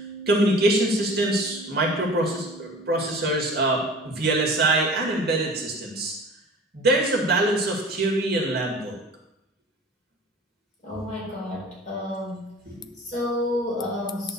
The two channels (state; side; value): normal; both; correlation 0.42